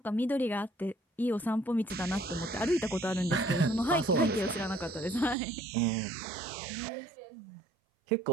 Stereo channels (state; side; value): drops out; left; at 5.4 s